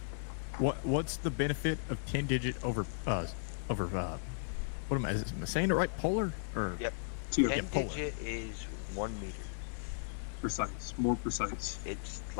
What's the benefit of 10 digit over what am I saying it right? Polar or Yep. 10 digit is 1 meter. Precise, more precise. It's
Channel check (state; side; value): silent; right; 54 dB below the other